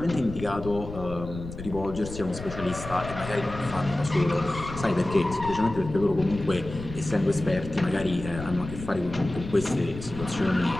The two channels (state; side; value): noise; left; rumble, 11 dB below the sound